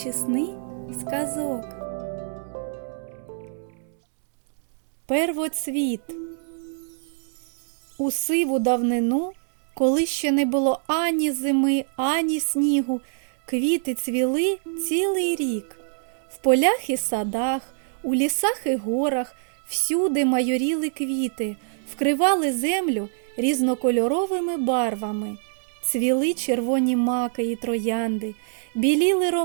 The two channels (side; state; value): left; silent; digital silence